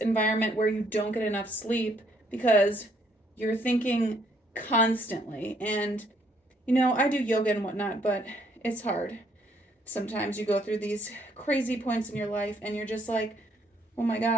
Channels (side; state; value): both; normal; correlation 0.68